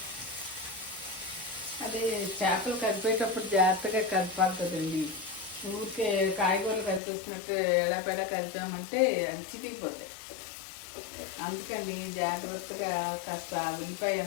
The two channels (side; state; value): right; drops out; at 7.0 s